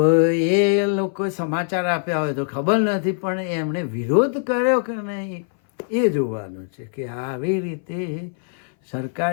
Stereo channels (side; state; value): right; silent; 59 dB below the other